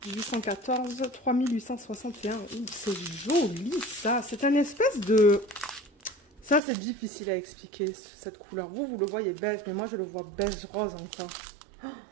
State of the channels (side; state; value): left; drops out; at 6.6 s